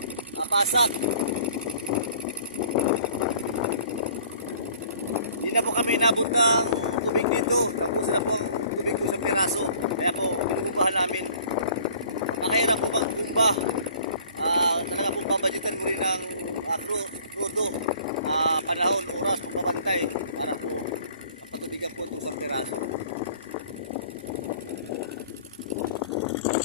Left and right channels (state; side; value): inverted; both; correlation -0.51